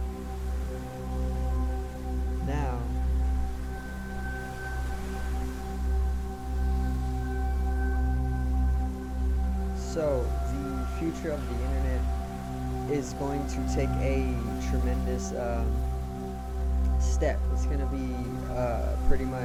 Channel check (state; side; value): identical; both; correlation 1.00